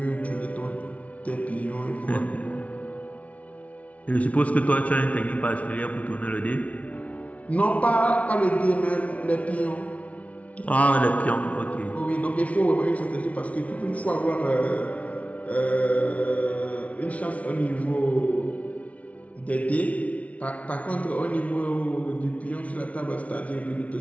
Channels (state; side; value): late; right; 0.066 ms